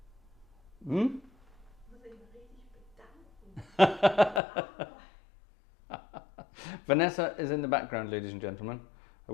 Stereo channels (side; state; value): right; drops out; at 4.4 s